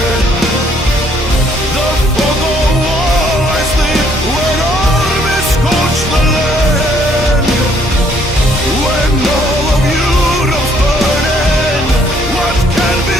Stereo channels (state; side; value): normal; both; correlation 0.66